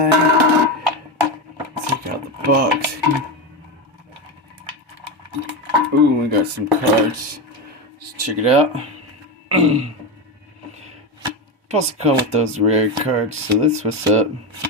Take out the box. Ooh, we got some cards. Let's check it out. Supposed to come with those rare cards, so that's what's up.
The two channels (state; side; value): normal; both; correlation 0.15